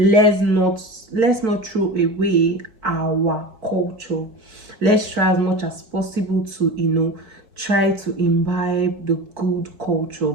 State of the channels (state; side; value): late; left; 4.5 ms